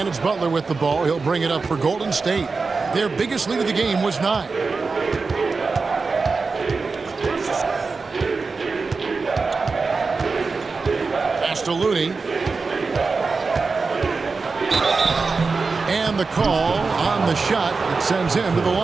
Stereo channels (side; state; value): left; quieter; 4.3 dB